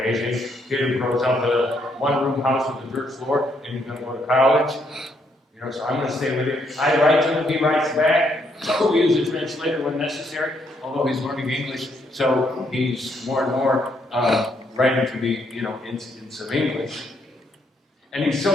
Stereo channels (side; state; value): both; normal; correlation 0.73